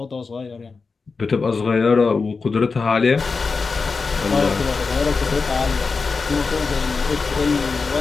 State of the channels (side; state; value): right; quieter; 4.5 dB